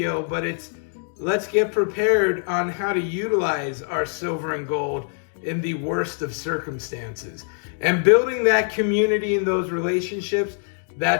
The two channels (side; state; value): right; silent; digital silence